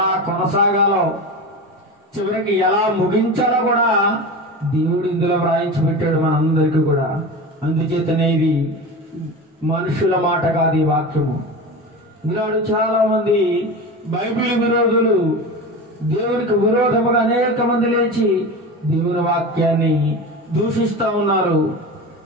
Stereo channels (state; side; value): normal; both; correlation 0.27